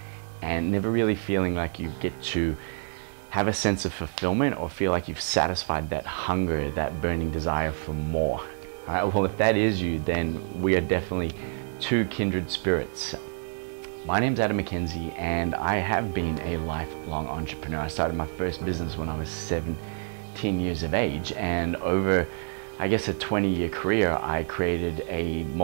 and never really feeling like you get to have a sense of fulfillment or feel like you've satisfied that hunger, that burning desire for more? All right, well, if that is you, then we are definitely two kindred spirits. My name's Adam McKenzie, and I have been a lifelong entrepreneur. I started my first business when I was 17 years of age, and over, I guess, a 20-year career, I created a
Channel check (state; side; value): silent; left; digital silence